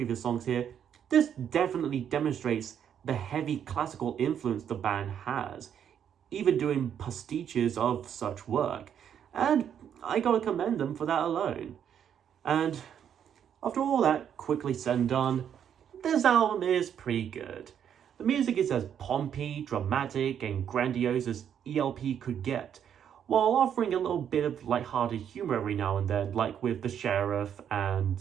songs here, this definitely demonstrates the heavy classical influence the band has, even doing pastiches of such work. And I gotta commend them for that alone. And after all that quickly said and done, this album is pretty good. The music is as pompy, dramatic, and grandiose as ELP could get, while offering a little bit of lighthearted humor every now and then, like with The Sheriff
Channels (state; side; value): quieter; left; 8.9 dB